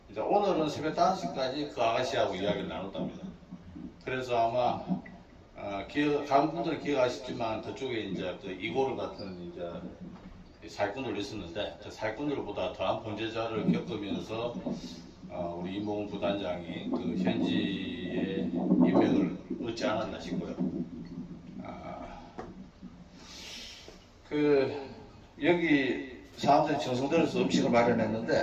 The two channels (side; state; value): both; identical; correlation 1.00